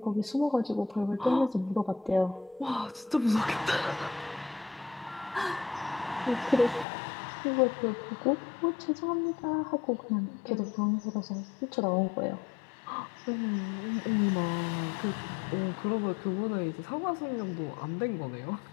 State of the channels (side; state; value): right; drops out; at 6.9 s